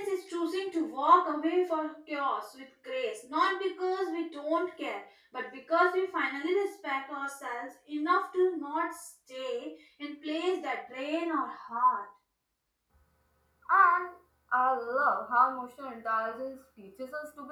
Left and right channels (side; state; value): both; identical; correlation 1.00